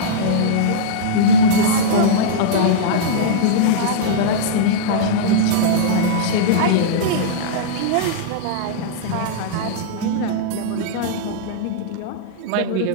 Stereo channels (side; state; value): both; different; correlation -0.03